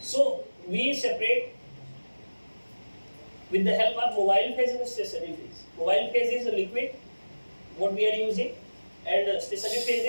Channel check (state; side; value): inverted; both; correlation -1.00